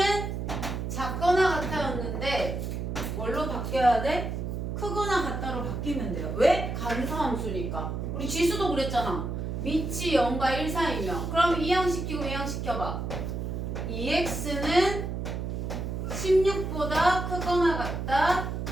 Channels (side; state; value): right; noise; hum, 4 dB below the sound